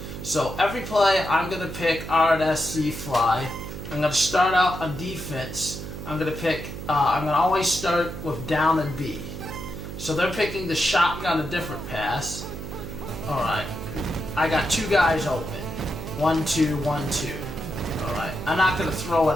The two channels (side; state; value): right; noise; hum, 9 dB below the sound